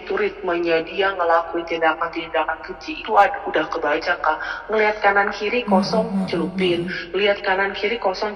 ritmenya dia ngelakuin tindakan-tindakan keji itu udah kebaca, Kak. Ngelihat kanan kiri kosong celupin, lihat kanan kiri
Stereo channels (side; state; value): both; identical; correlation 1.00